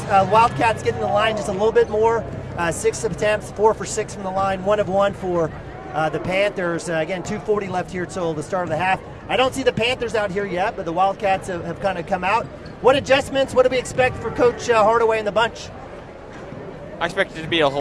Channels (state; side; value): identical; both; correlation 1.00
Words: Wildcats getting the line just a little bit more. 6 attempts, 4 for 6 from the line, 1 of 1 for the Panthers. Again, 2:40 left here till the start of the half. I don't see the Panthers out here yet, but the Wildcats have kind of come out. What adjustments, what do we expect for Coach Hardaway and the bunch? I expect it to be a